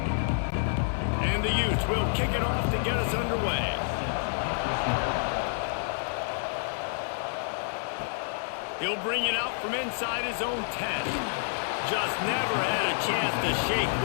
And the Utes will kick it off to get us underway. He'll bring it out from inside his own 10. Just never had a chance to shake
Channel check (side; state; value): right; silent; digital silence